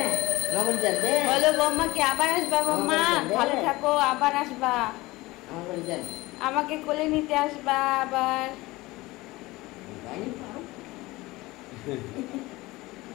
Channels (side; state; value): right; quieter; 20.3 dB